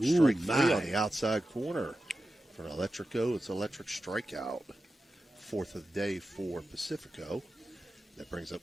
strike three on the outside corner. For an Electrico, it's electric strikeout. Fourth of the day for Pacifico. That brings up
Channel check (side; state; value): both; normal; correlation 0.92